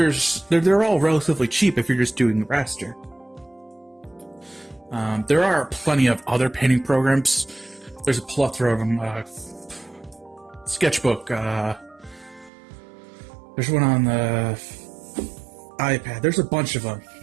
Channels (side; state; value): left; drops out; at 12.5 s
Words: all relatively cheap if you're just doing raster. There are plenty of other painting programs. There's a plethora of them. Sketchbook. There's one on the iPad. There's a bunch of them.